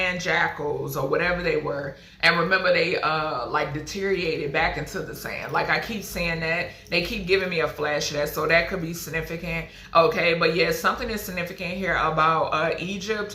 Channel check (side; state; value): both; identical; correlation 1.00